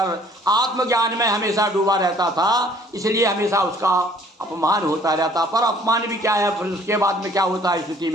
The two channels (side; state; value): both; normal; correlation 0.57